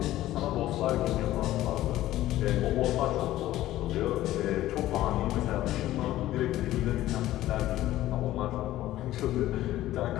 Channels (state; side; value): quieter; right; 14.7 dB